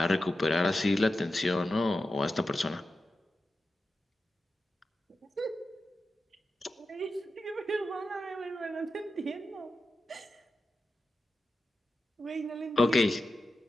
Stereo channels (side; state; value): both; normal; correlation 0.91